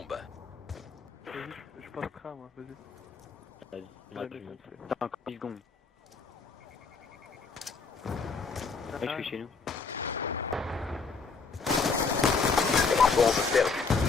Vas-y, je passe train moi, vas-y. Vas-y, Je moi, vais tu les montes. lancer. Attends, encore 10 secondes. Ouais, je suis chez nous. Bombe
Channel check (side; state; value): right; quieter; 4.8 dB